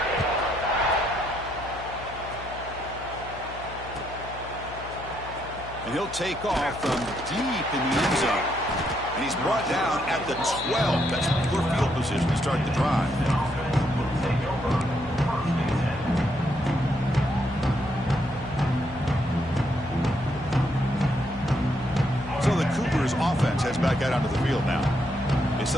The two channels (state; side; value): noise; left; hum, 14 dB below the sound